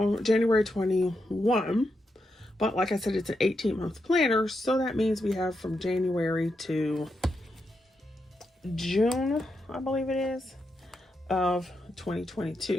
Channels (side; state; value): both; normal; correlation 0.84